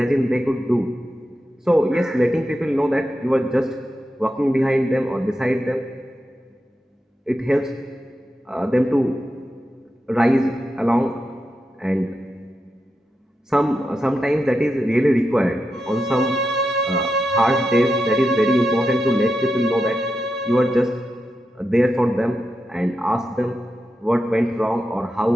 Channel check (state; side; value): normal; both; correlation 0.88